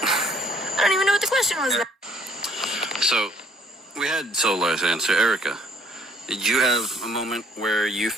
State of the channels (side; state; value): both; normal; correlation 0.62